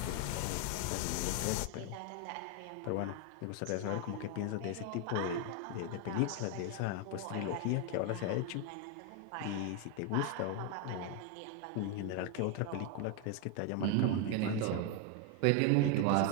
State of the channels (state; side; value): different; both; correlation 0.01